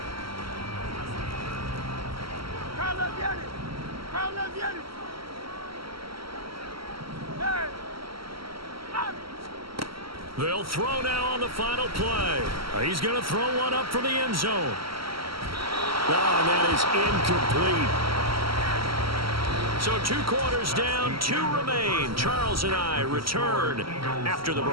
They'll throw now on the final play. He's going to throw one up for the end zone. Oh, and that is incomplete. So 2 quarters down, 2 remain. Charles and I return after the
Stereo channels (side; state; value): left; late; 0.75 ms